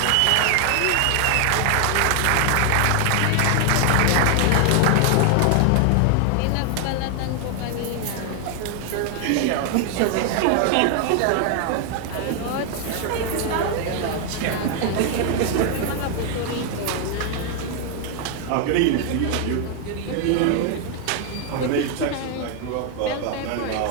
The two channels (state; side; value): different; both; correlation 0.00